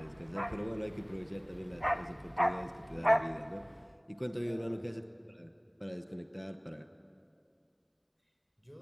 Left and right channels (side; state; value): both; identical; correlation 1.00